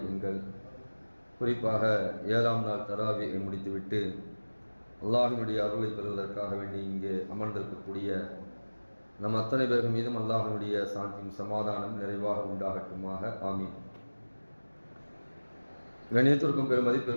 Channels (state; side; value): inverted; both; correlation -1.00